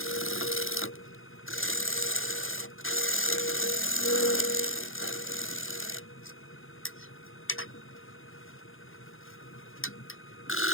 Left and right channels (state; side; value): late; right; 0.59 ms